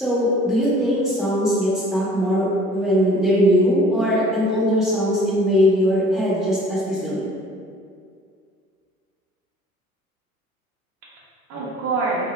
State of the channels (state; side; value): normal; both; correlation 0.51